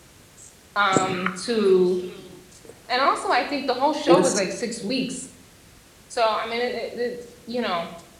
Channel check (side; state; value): both; identical; correlation 1.00